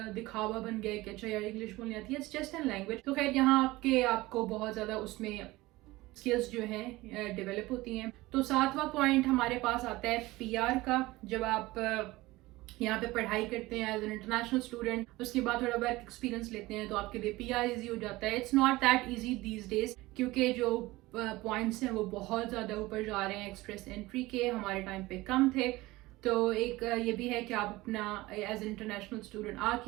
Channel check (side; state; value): left; quieter; 19.6 dB